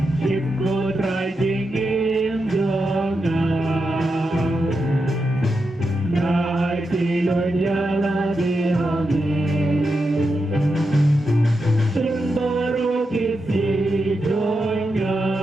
Shim ko try jingim jongan Nai tilon yala dihami Shim baru kisi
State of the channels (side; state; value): both; normal; correlation 0.87